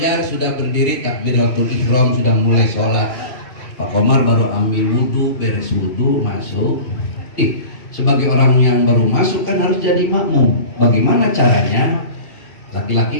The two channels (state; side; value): late; right; 2.5 ms